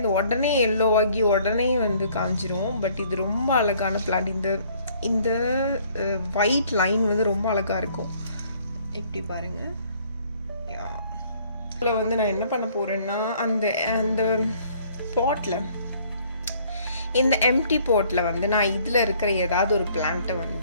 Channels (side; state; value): both; inverted; correlation -0.60